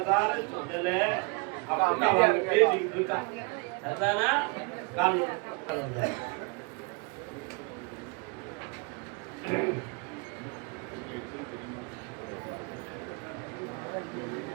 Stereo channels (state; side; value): quieter; left; 30.0 dB